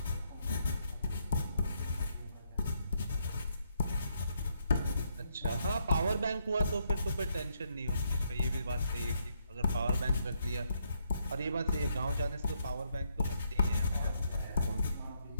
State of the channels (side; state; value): both; inverted; correlation -0.76